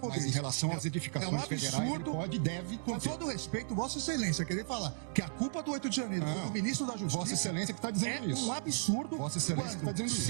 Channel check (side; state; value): left; silent; digital silence